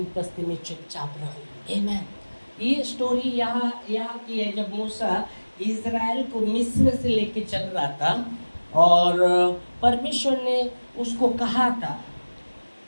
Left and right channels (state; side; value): inverted; both; correlation -1.00